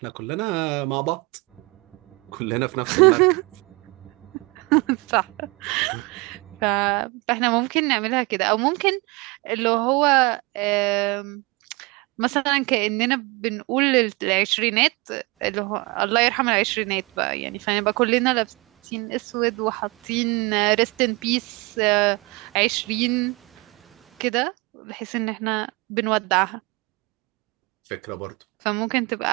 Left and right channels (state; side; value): quieter; left; 26.1 dB